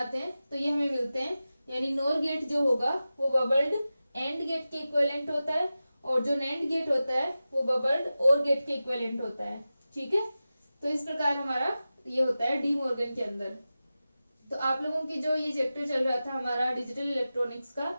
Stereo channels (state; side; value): inverted; both; correlation -0.94